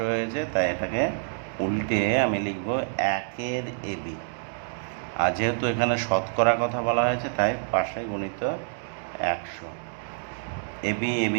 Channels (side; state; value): left; silent; digital silence